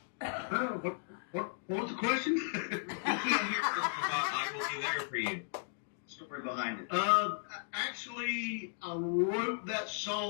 What was the question? I will be there for you. Story behind it. Actually, I wrote that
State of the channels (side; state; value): right; silent; digital silence